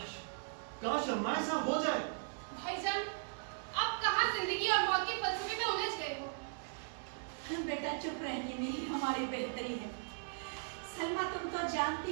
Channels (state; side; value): silent; left; 52 dB below the other